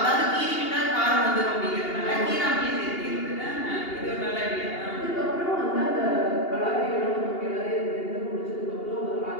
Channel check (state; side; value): late; right; 2.8 ms